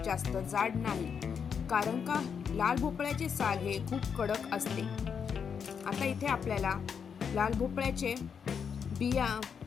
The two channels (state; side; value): quieter; right; 6.8 dB